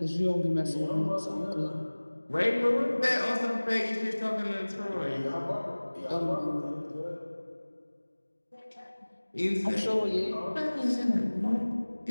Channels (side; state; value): both; inverted; correlation -1.00